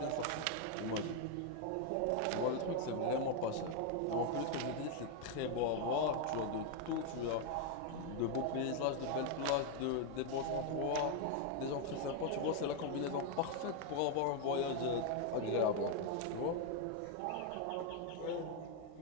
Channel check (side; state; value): both; different; correlation 0.01